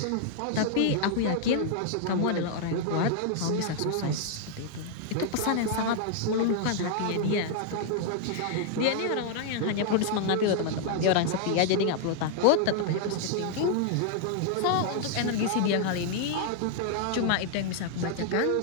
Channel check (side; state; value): both; different; correlation 0.00